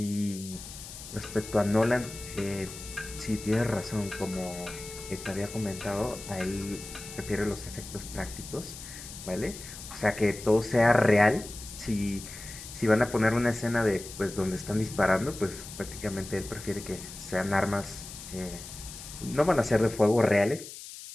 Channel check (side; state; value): left; noise; hiss, 13 dB below the sound